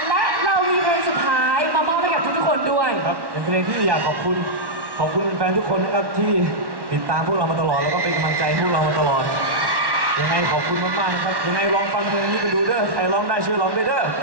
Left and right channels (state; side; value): late; left; 1.1 ms